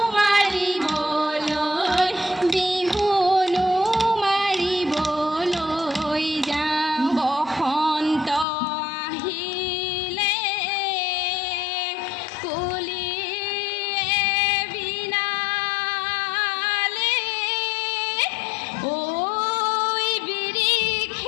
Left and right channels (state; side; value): drops out; right; at 8.5 s